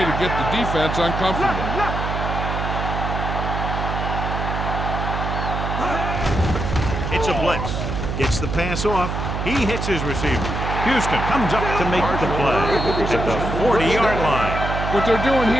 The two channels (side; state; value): right; noise; hum, 3 dB below the sound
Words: to get the defense uncomfortable. It's a blitz. Gets the pass off. He hits his receiver. Houston comes up to make the play at the 40-yard line. What they're doing